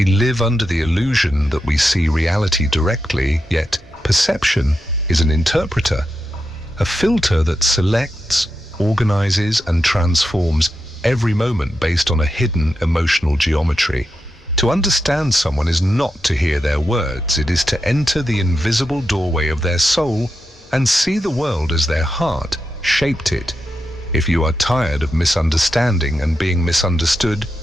live under the illusion that we see reality directly, yet perception is an interpreter, a filter that selects, organizes, and transforms every moment based on a hidden emotional geometry. To understand someone is not to hear their words, it is to enter the invisible doorway of their soul and see the world as their heart shaped it. If you are tired of misunderstanding and being misunderstood,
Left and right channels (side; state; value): both; normal; correlation 0.88